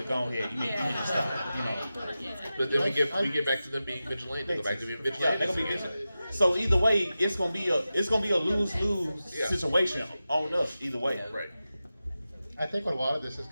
go ahead. You need to stop. But then we get back to them being vigilant. They go back to being vigilant. Yeah, they're gonna be vigilant. So either way, it's gonna be a lose-lose situation on us either way. Right. I think what a lot of this is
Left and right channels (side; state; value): both; inverted; correlation -0.93